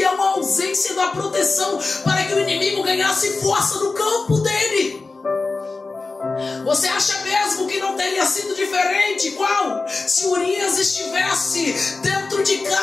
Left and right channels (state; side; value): quieter; right; 3.8 dB